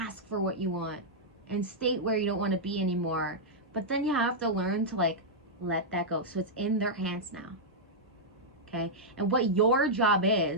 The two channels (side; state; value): both; normal; correlation -0.08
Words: for what you want, and state where you don't want to be anymore. But then you have to learn to let that go. So it's in their hands now. Okay? And what your job